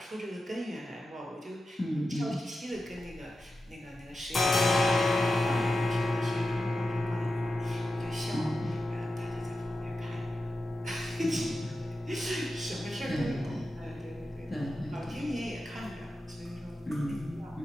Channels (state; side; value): normal; both; correlation 0.91